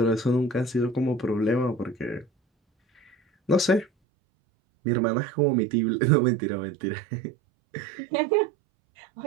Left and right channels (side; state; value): left; drops out; at 3.9 s